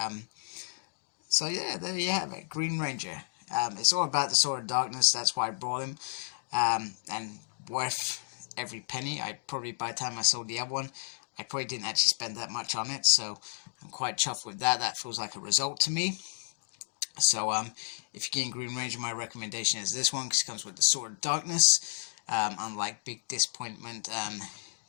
So yeah, there you have it, Green Ranger. It's all about the Sword of Darkness, that's why I brought him, and worth every penny. By the time I sold the other one, I probably didn't actually spend that much on it, so I'm quite chuffed with that. That feels like a result to me. So if you're getting Green Ranger, my recommendation is this one, because it comes with the Sword of Darkness, unlike Big Disappointment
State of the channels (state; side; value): silent; right; digital silence